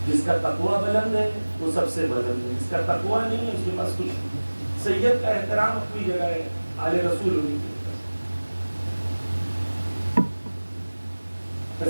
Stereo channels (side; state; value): both; inverted; correlation -1.00